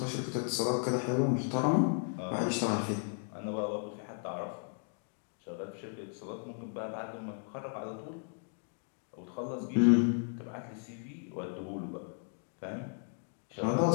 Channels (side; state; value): right; silent; 54 dB below the other